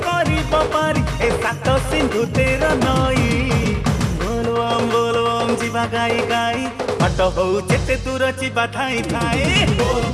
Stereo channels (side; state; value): both; identical; correlation 1.00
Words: करिब पारी ए सात सिंधु 13 नई बोलबम जीवा गाई गाई बाट हो जेते दूर जीवा धाई धाई